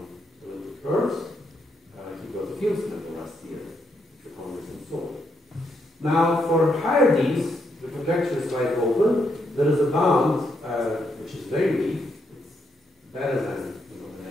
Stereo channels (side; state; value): both; normal; correlation 0.78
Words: elliptic curves, he got the Fields medal last year, the Congress in Seoul. Now, for higher d's, the conjecture is wide open. There is a bound which is very weak. It's better than the